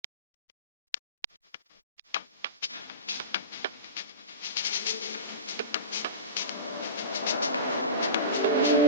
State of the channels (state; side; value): inverted; both; correlation -0.32